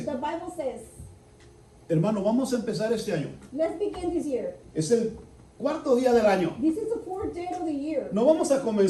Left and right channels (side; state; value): both; identical; correlation 1.00